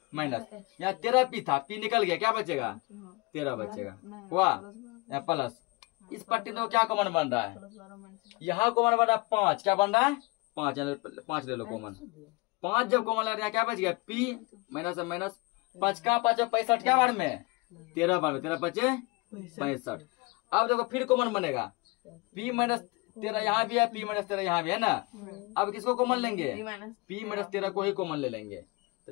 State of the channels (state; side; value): quieter; right; 25.3 dB